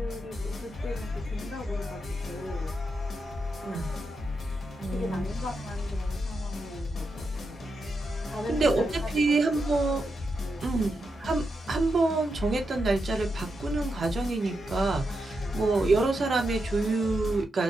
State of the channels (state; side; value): normal; both; correlation 0.85